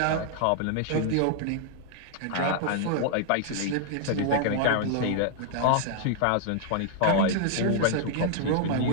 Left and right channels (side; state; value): both; different; correlation -0.01